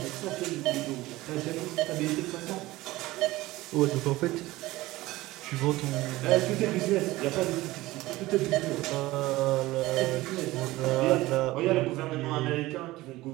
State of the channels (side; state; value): left; quieter; 18.4 dB